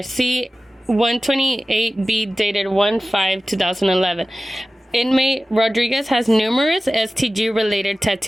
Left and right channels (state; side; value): normal; both; correlation 0.96